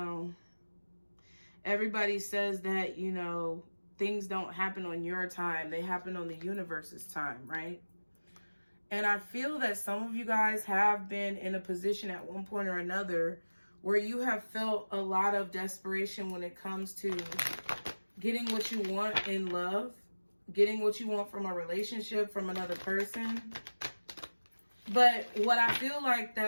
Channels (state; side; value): inverted; both; correlation -1.00